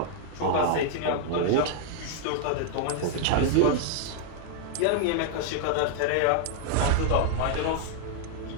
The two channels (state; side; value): different; both; correlation -0.01